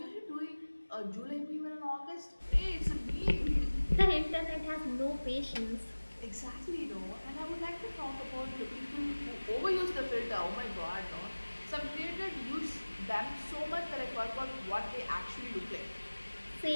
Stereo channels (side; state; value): both; inverted; correlation -1.00